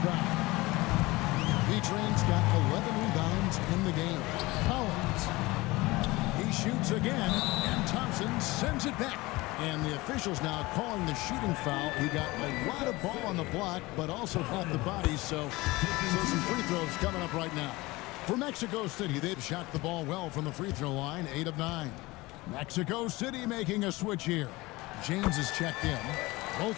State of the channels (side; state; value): right; quieter; 21.3 dB